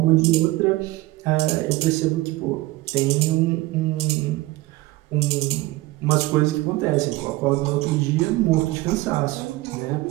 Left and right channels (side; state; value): left; quieter; 19.2 dB